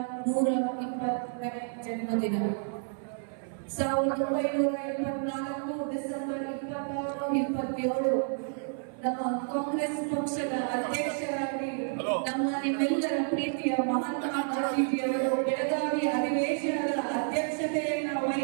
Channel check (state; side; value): silent; left; 57 dB below the other